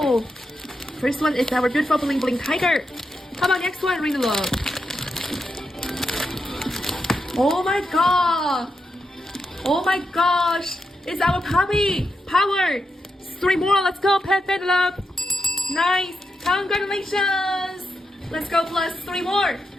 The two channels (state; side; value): normal; both; correlation 0.85